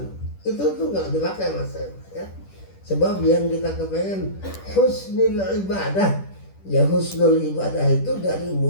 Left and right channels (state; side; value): late; right; 10 ms